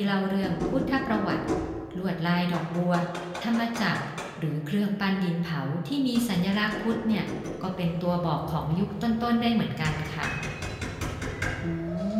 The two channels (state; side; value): identical; both; correlation 1.00